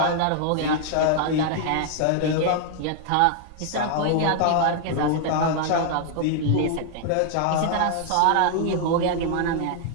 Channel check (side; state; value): both; different; correlation 0.00